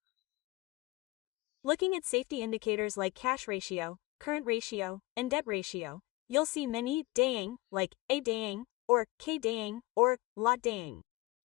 Looking at safety indicators like cash ratio, current ratio, and debt ratio, you'll see many daeng, like A daeng, or K daeng, or lot daeng.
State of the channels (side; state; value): right; quieter; 21.2 dB